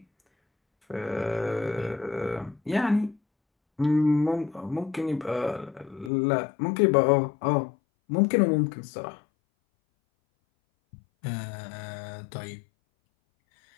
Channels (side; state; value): right; drops out; at 6.1 s